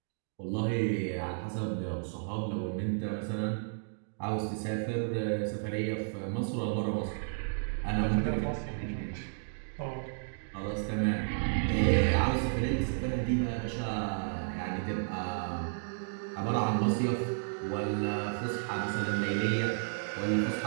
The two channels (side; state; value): left; silent; digital silence